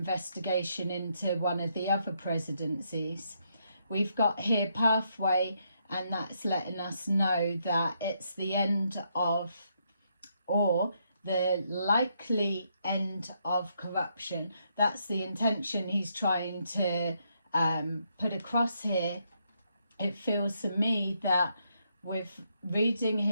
into one of the other presidencies. We've got here pathway, and that's letting us know that it's the end of, or the likely end of corruption. That's the intention he's trying to put across here. It feels to me that with reading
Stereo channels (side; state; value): both; inverted; correlation -0.76